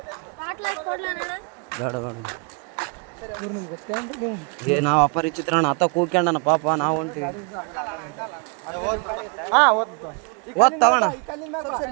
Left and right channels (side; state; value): left; quieter; 33.7 dB